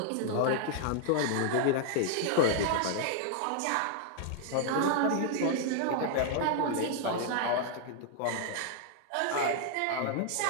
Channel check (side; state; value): both; different; correlation 0.00